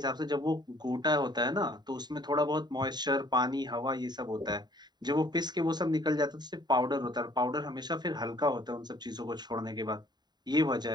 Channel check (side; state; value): left; late; 0.20 ms